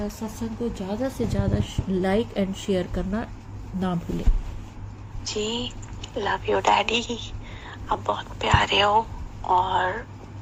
को ज़्यादा से ज़्यादा लाइक एंड शेयर करना ना भूलें। जी, लव यू डैडी, आप बहुत प्यारे हो। और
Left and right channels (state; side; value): identical; both; correlation 1.00